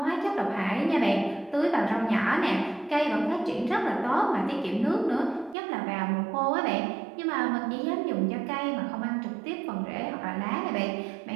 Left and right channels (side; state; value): left; drops out; at 5.6 s